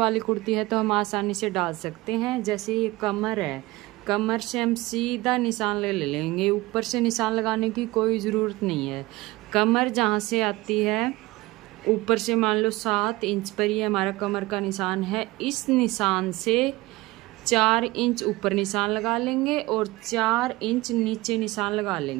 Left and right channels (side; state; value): left; quieter; 20.5 dB